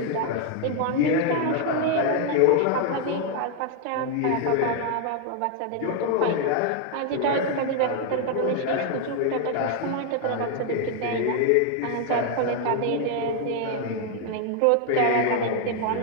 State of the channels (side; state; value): both; different; correlation 0.00